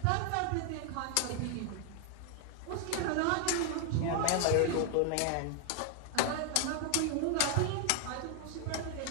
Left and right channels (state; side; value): different; both; correlation 0.00